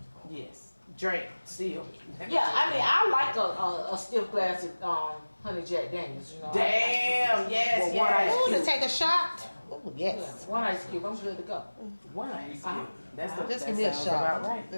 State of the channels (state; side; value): inverted; both; correlation -1.00